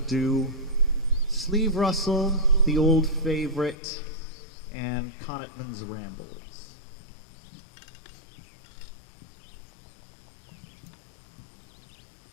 do Sleeve Rustle, The Old Favorite, and Connaughton's Rambles.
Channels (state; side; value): drops out; right; at 3.8 s